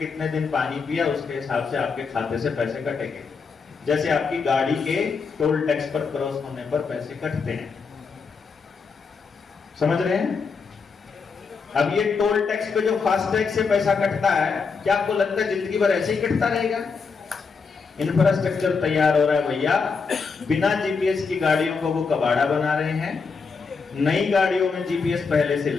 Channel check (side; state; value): right; quieter; 5.1 dB